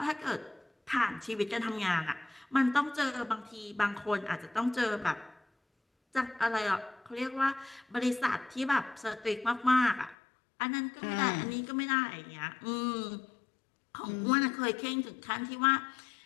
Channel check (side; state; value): right; drops out; at 10.2 s